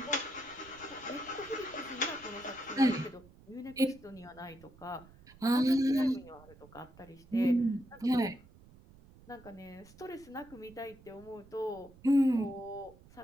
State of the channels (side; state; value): right; noise; rumble, 23 dB below the sound